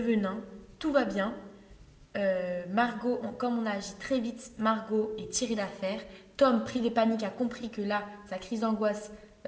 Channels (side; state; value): both; identical; correlation 1.00